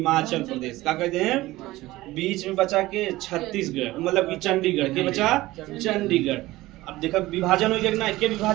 प्रदेश, का कहते हैं। बीच में बचा के छत्तीसगढ़, मतलब कि चंडीगढ़ के बचा चंडीगढ़। अब देखो विभाजन हो गया ना, के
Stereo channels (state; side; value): quieter; left; 17.9 dB